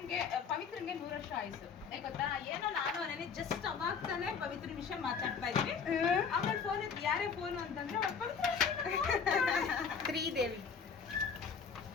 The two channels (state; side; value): quieter; right; 6.1 dB